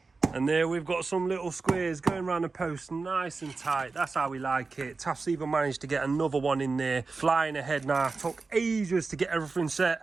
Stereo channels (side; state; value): left; quieter; 4.1 dB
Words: And there we've got some little squares going around the post nice and tight. That's how we like it. Taff's even managed to get another one in there. Flying ahead now. Took ages to get everything